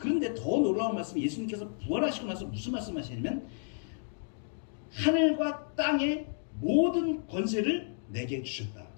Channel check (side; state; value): right; silent; digital silence